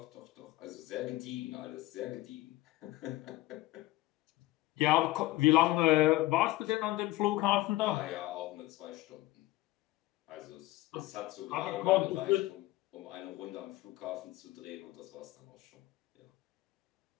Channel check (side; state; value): right; quieter; 17.9 dB